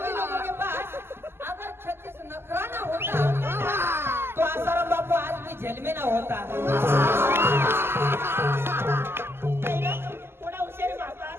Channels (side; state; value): left; late; 0.12 ms